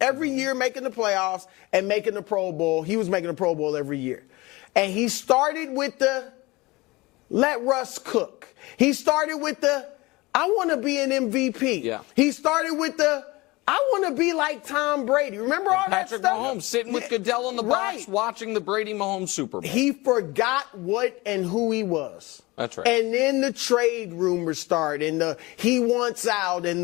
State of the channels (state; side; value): quieter; right; 22.1 dB